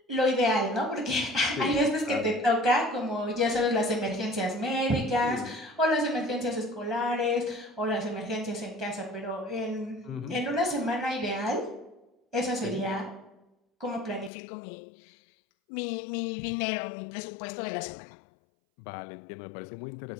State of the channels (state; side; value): drops out; right; at 14.3 s